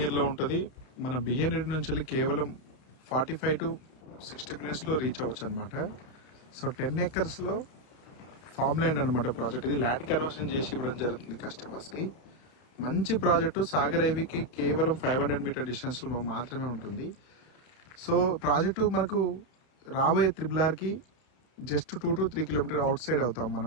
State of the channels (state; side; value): late; right; 31 ms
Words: లో ఉంటది. మన బిఎన్ రెడ్డి నుంచి వెళ్ళి కేవలం 45 to 60 minutes లో రీచ్ అవ్వచ్చు అనమాట. సో 10 acres లో ఫార్మ్ ల్యాండ్ అనమాట ప్రాజెక్ట్. ఇది ల్యాండ్ కన్వర్షన్ చేసి ఇవ్వడం జరుగుతుంది కస్టమర్స్ కి. మంచి ప్రాజెక్టు సాగర్ హైవేకి కేవలం 500 మీటర్ డిస్టెన్స్ లో మాత్రమే ఉంటుంది. సో ప్రాజెక్టు మనకు రాబోయే త్రిబుల్ కి just 2 to 3 kilometer outside అవుతాం